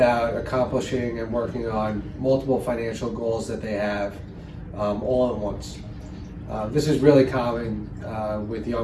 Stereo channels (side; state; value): both; identical; correlation 1.00